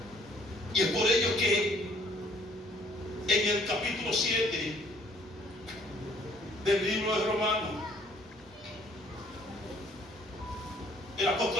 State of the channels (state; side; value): normal; both; correlation 0.60